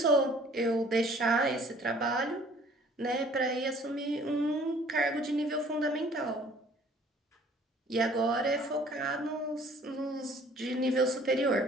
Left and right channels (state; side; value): normal; both; correlation 0.55